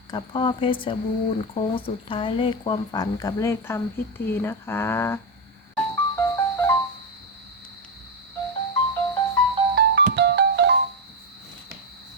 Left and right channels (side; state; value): both; normal; correlation 0.07